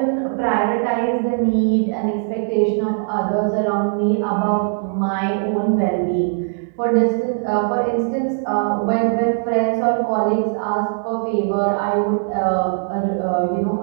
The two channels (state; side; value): silent; left; digital silence